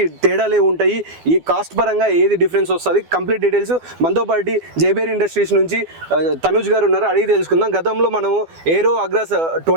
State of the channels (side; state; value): left; late; 12 ms